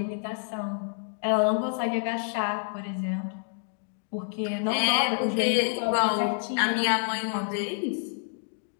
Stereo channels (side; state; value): right; silent; digital silence